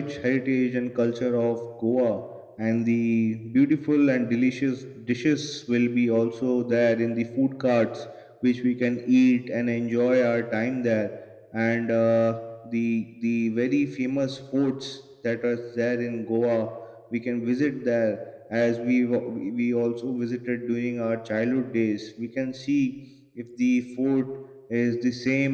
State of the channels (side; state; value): both; identical; correlation 1.00